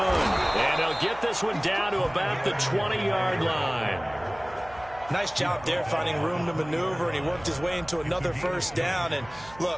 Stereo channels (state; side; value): noise; right; hum, 20 dB below the sound